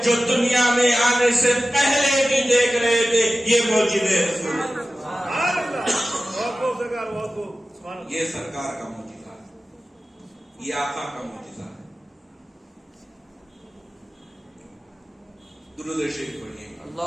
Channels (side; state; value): both; normal; correlation 0.95